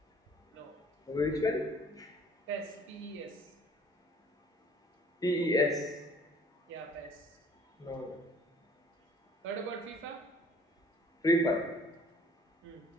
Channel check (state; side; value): normal; both; correlation 0.55